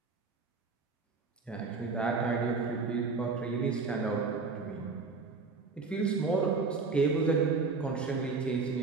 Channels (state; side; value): quieter; left; 4.4 dB